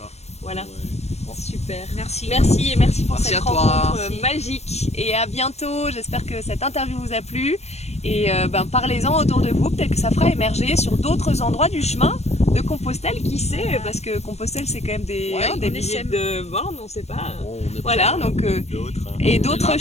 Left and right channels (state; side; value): late; right; 0.31 ms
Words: voilà, Ouais. super. Merci. Merci et merci pour Merci cette à toi. rencontre Merci. magique et à bientôt. J'espère que cette interview vous a plu et parlez-en autour de vous. Peut-être que ça fera émerger sur d'autres endroits du chemin de Compostelle, qui sait, parce que Compostelle c'est quand même des Ouais, des on milliers essaime. de bornes, on ne sait pas. Bon, on est Voilà, prêts, hein. donc D'autres. Hein. et on est d'autres là,